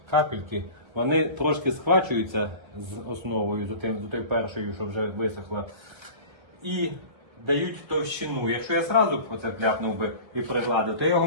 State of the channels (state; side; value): late; left; 1.5 ms